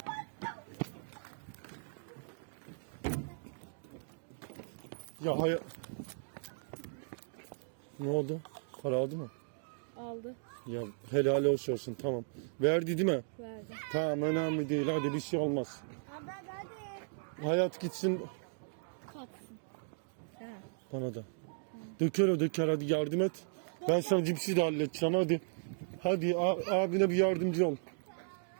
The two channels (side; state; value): left; silent; digital silence